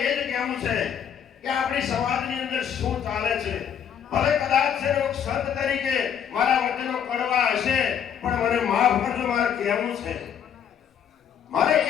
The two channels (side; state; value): right; quieter; 8.5 dB